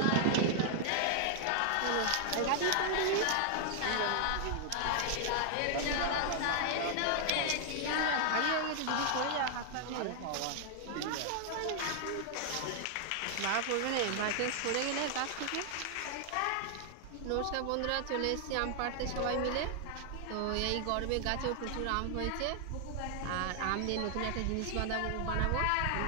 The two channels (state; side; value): different; both; correlation 0.00